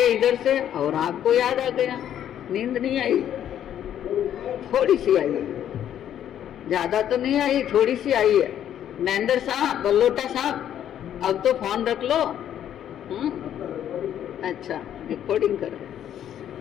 इधर से और आपको याद आ गया। नींद नहीं आई, थोड़ी सी आई है, ज्यादा तो नहीं आई, थोड़ी सी आई है। महेंद्र साहब, बल्लोटा साहब, अब तो फोन रख लो। अच्छा, रिकॉर्डिंग करो।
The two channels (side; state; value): right; quieter; 10.4 dB